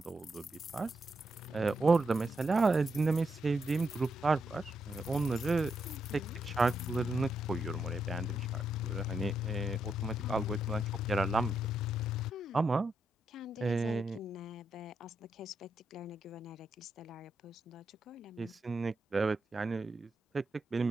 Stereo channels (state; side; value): normal; both; correlation 0.81